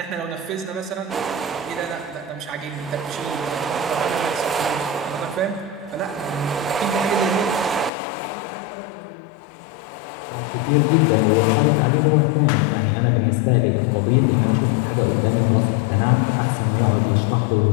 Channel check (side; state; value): right; drops out; at 7.9 s